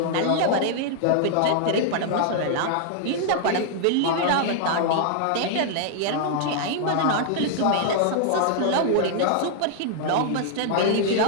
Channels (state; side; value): different; both; correlation -0.01